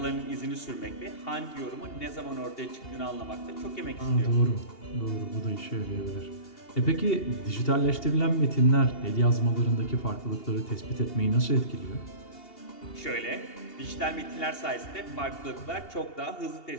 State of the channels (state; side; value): late; right; 2.8 ms